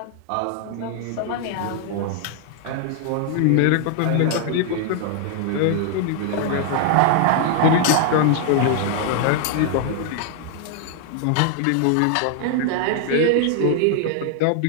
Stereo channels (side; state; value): both; different; correlation 0.00